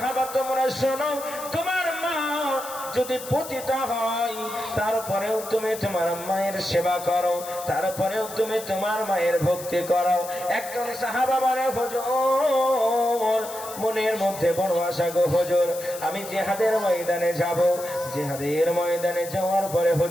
তোমরা শোনো, তোমার মা যদি পতিত হয়, তারপরেও তুমি তোমার মায়ের সেবা করো, তারপরেও তুমি তোমার মায়ের ভক্তি করো। একজন সাহাবা বলে, হুজুর মনের মধ্যে বড় আশা গো হুজুর, আমি জিহাদের ময়দানে যাব, জিহাদের ময়দানে যাওয়ার পরে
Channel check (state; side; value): noise; left; hiss, 12 dB below the sound